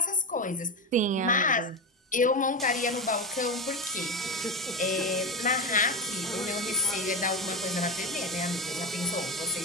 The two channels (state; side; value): normal; both; correlation 0.18